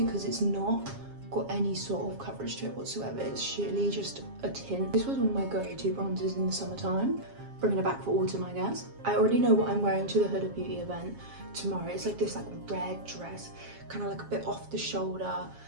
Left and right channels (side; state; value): left; late; 7.4 ms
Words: it's not got any sort of coverage to it whatsoever. It's sheerly just a tint. This was one of my go-to bronzers in the summertime. Bringing it back for autumn, I guess. I already know what I'm wearing to the Huda Beauty event tomorrow. It's like this red dress, kind of like a bit off the shoulder,